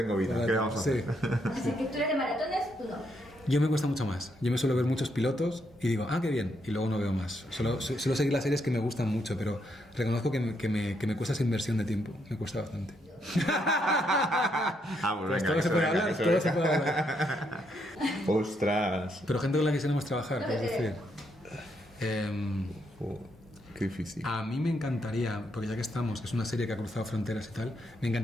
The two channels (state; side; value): normal; both; correlation 0.76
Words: vida, ¿qué vamos a hacer? Así que tú eres de maratones, tú no. Yo me cuesta mucho más. Yo me suelo ver muchos pilotos y digo, qué bien, y luego no veo más. Suelo seguir las series que me gustan mucho, pero reconozco que me cuesta esa inversión de tiempo. Me cuesta bastante. Pues todo se puede hablar, ¡Ostras! Pero gente con la que quisiéramos trabajar, es decir... Qué difícil. A mí me encantaría, porque ya que estamos, que es una serie que ha cruzado fronteras y tal, me